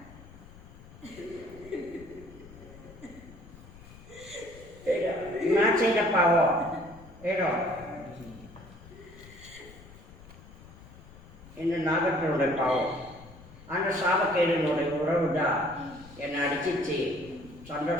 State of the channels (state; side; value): noise; left; rumble, 19 dB below the sound